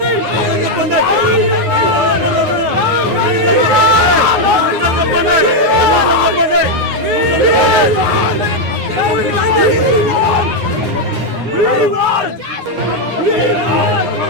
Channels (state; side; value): late; left; 9.9 ms